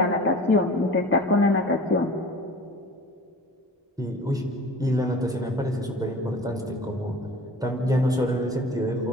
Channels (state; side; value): normal; both; correlation 0.41